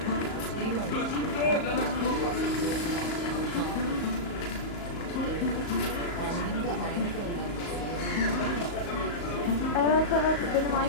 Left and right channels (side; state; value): right; late; 34 ms